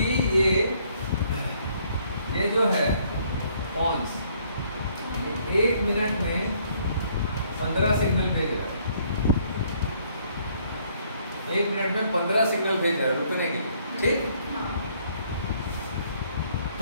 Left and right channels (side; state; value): both; inverted; correlation -0.65